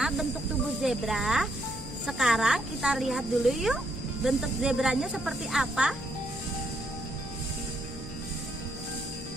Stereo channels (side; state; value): both; normal; correlation 0.74